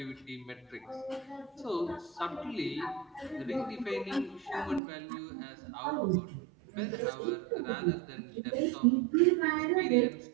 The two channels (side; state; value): left; drops out; at 4.8 s